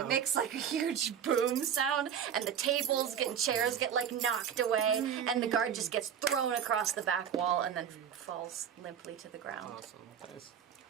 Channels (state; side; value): quieter; left; 8.4 dB